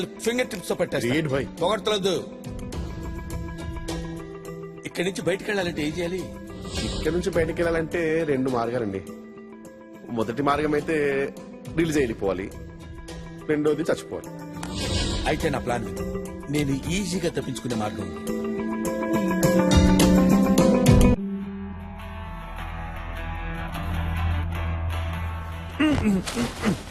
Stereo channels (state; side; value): identical; both; correlation 1.00